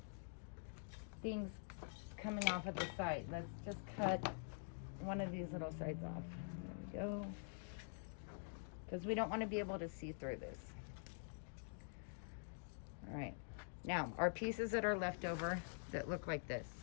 things coming off of the side. Let's just cut one of these little sides off. There we go. Because we don't want to be able to see through this. All right, now our pieces that are left over that look like this,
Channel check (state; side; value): silent; right; digital silence